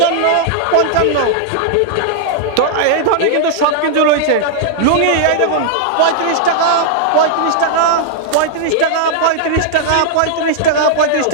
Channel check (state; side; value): different; both; correlation -0.01